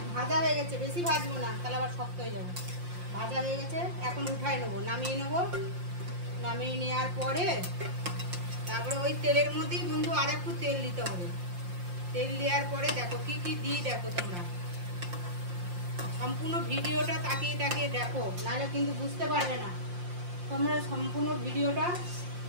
ভাজা হয়ে গেছে, বেশি ভাজবো না, তাহলে আবার শক্ত হয়ে যাবে। ভাজা হয়ে গেছে, এখন উঠাই নেবো, নামিয়ে নেবো। নামিয়ে নেওয়ার পরে তারপরে ওই তেলের মধ্যেই বন্ধু আর একটু তেল দিতে হবে। তেল দেওয়ার পরে দেখো কি কি দিই, দেখো তোমরা সম্পূর্ণ ভিডিওটা তাকিয়ে তাকিয়ে দেখো, নাহলে কিন্তু বুঝতে পারবে না। তোমরা সম্পূর্ণ ভিডিওটা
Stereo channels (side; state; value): left; late; 5.7 ms